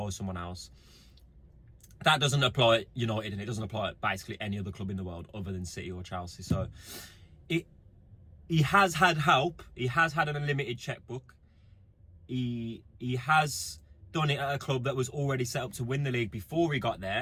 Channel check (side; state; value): both; identical; correlation 1.00